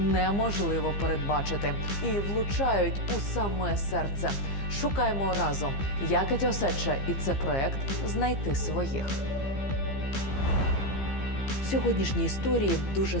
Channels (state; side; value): late; right; 15 ms